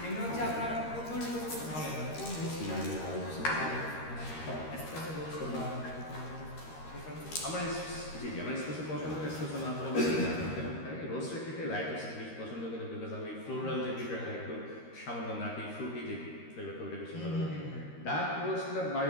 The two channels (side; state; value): right; late; 13 ms